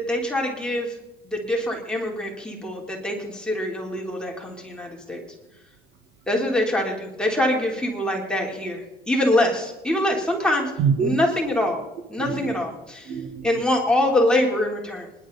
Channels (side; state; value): both; normal; correlation 0.66